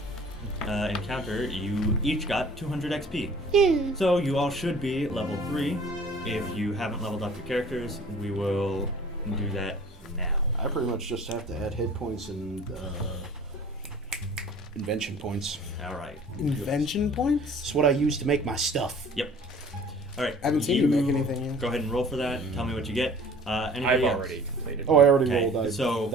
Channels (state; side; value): normal; both; correlation 0.48